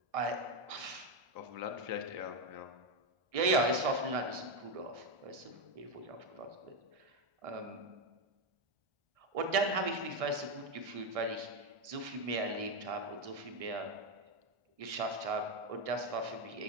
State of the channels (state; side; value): late; left; 1.6 ms